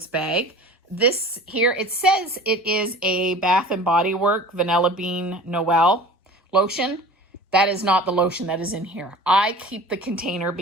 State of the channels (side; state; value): both; normal; correlation 0.41